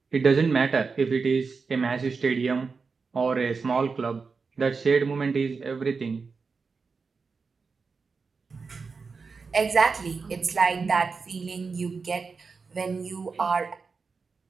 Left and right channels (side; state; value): left; quieter; 4.8 dB